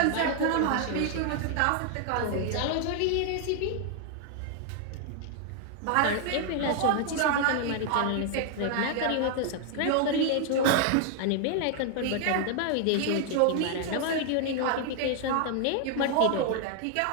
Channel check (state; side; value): different; both; correlation 0.00